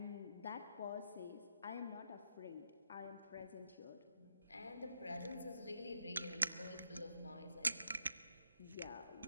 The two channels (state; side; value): inverted; both; correlation -0.78